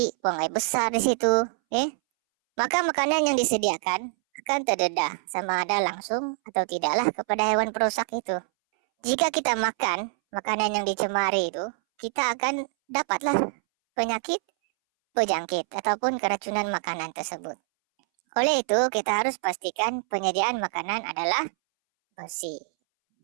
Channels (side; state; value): left; silent; 61 dB below the other